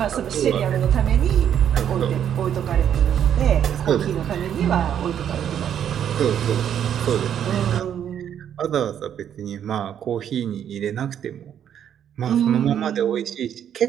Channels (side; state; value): left; quieter; 9.4 dB